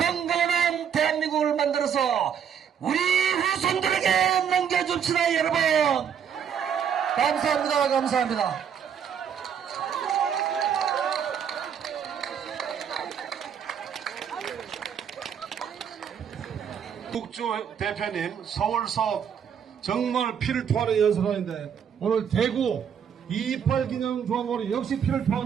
대한민국을 만들어서 우리 후손들에게 넘겨줍시다, 여러분. 감사합니다. 감사합니다. 국주 대표님 서울서 정말 피를 토하는 연설하는데 오늘 대구 2.28 기념 조항으로 역시 피를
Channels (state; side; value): quieter; left; 8.0 dB